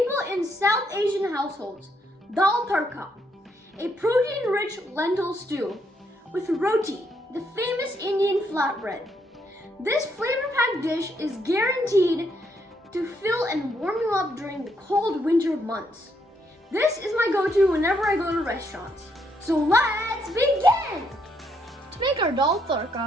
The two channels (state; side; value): normal; both; correlation 0.74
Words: in South Asian households, Dal Tadka, a protein-rich lentil stew with roti, the famous Indian flatbread. This flavor-packed dish is guaranteed to fill and warm you up during the cold winter months. This is my go-to whenever I go to restaurants. So let's begin! To make our Dal